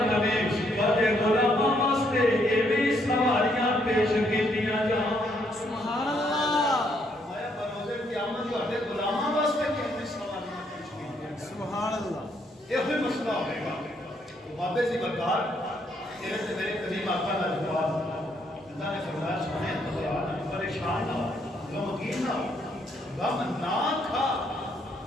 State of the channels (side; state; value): both; normal; correlation 0.72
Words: میں وڈے غلاماں واسطے یہ بھی سواریاں پیش کیتیاں جان سبحان اللہ میں روزے قیامت وڈے غلاماں واسطے کتنی سواریاں پیش کیتیاں سبحان اللہ یہ ہوئی مسئلہ ہوئے گا بابے سی برکار تیرے سے میرے قدیم آقا کا جواب اللہ نے فرمایا سنے پریشان نہ ہو غمگین نہ ہو غم نہ کھا